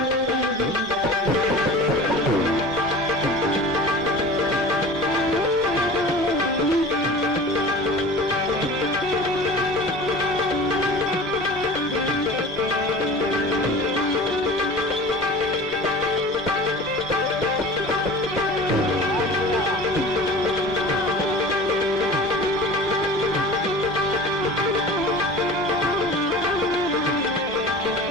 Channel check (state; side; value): normal; both; correlation 0.39